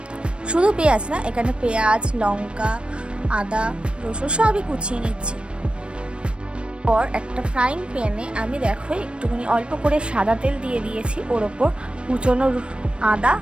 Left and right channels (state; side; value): late; left; 0.057 ms